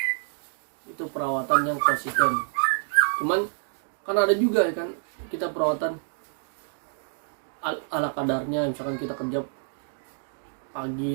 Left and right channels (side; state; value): left; silent; digital silence